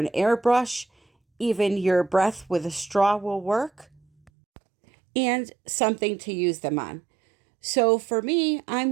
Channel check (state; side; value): drops out; left; at 4.3 s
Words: airbrush. Even your breath with a straw will work, and something to use them on. So for me,